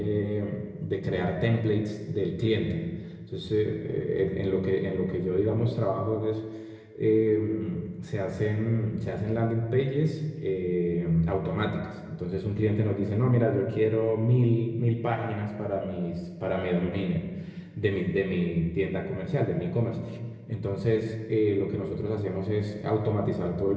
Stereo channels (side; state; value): both; identical; correlation 1.00